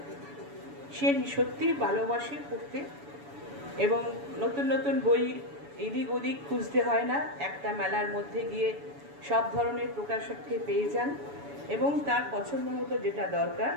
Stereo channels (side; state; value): left; late; 7.0 ms